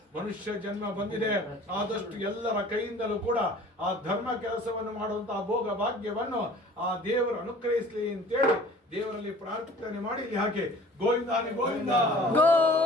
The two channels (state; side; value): normal; both; correlation 0.48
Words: ಮನುಷ್ಯ ಜನ್ಮ ಬಂದಿದೆ. ಆದಷ್ಟು ಎಲ್ಲರ ಕೈಯಿಂದಲೂ ಕೂಡ ಆ ಧರ್ಮ ಕೆಲಸವನ್ನು ಮಾಡುವಂತಹ ಭೋಗ ಭಾಗ್ಯವನ್ನು ಆ ದೇವರು ಅನುಗ್ರಹಿಸಲಿ ಅಂತೇಳಿ ದೇವರಲ್ಲಿ ಪ್ರಾರ್ಥನೆ ಮಾಡಿ ಹಾಗೆ ಗೋವಿಂದಾನಿ ಗೋವಿಂದ